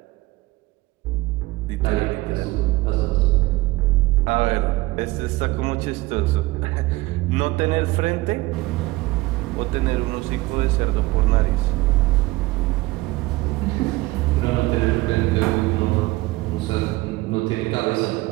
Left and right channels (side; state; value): left; quieter; 20.3 dB